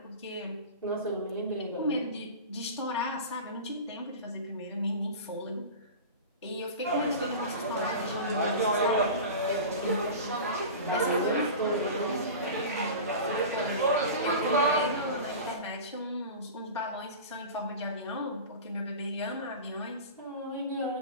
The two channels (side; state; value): both; inverted; correlation -0.31